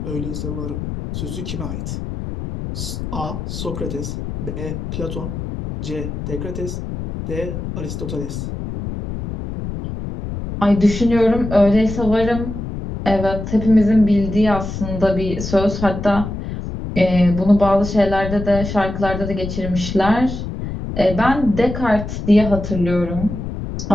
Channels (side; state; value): left; noise; rumble, 6 dB below the sound